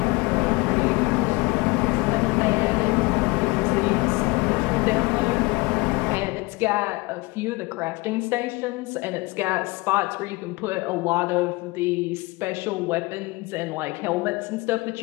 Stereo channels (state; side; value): quieter; right; 24.1 dB